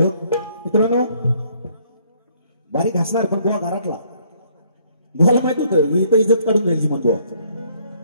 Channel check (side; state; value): both; inverted; correlation -0.64